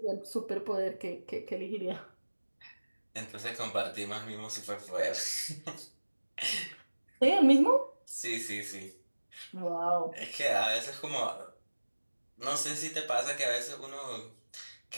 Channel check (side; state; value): both; inverted; correlation -1.00